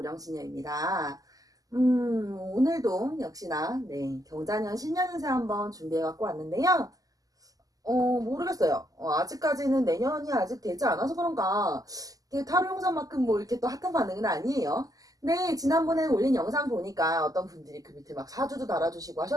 오늘도 역시나 경자년 신년운세 한번 준비해 갖고 왔는데요. 모르겠어요. 아직까지는 내년이 아직 되지 않아서 그런가 이게 타로 영상만큼 뭐 이렇게 또 핫한 반응은 아니에요. 근데 지난번에 올린 영상 보니까 어떤 분들이 그 밑에 막 사주도 달아주시고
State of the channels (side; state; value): left; late; 0.17 ms